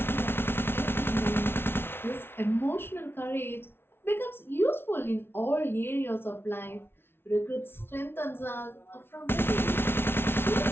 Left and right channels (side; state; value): right; late; 0.11 ms